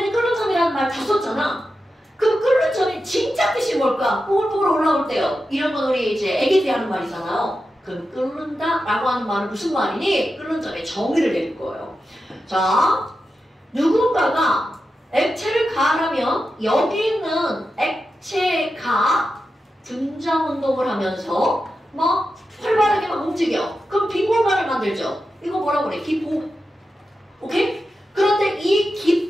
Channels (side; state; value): both; normal; correlation 0.90